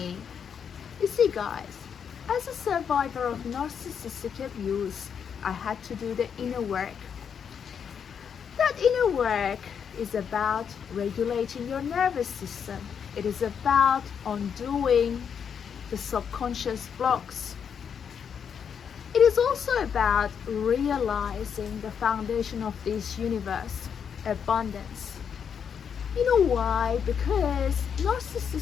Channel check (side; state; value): right; quieter; 7.3 dB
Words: You see, guys, as a survivor of narcissistic abuse, I had to do the inner work. That inner work is about regulating your nervous system. It is about undoing the subconscious blocks. It is also about realizing the foundation of this universe, abundance. You know why? Because